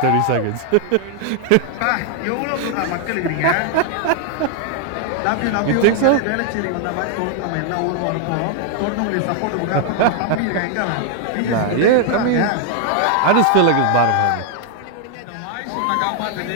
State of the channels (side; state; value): both; different; correlation 0.00